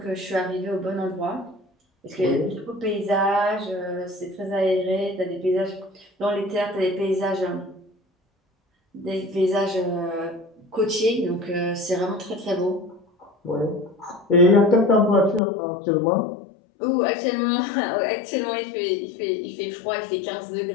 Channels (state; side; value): drops out; right; at 15.4 s